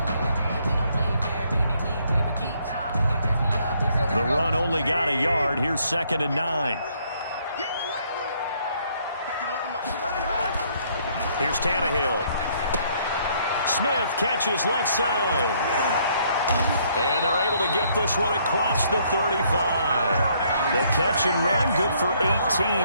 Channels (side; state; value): both; inverted; correlation -0.67